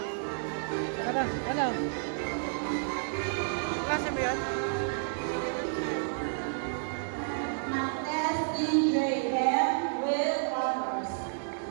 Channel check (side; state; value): left; silent; digital silence